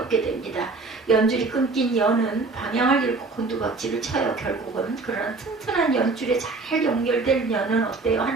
됩니다. 연줄이 끊긴 연은 방향을 잃고 곤두박질을 쳐요. 결국은. 그러나 튼튼한 연줄에 잘 연결된 연은 어때요?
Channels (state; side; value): quieter; left; 3.8 dB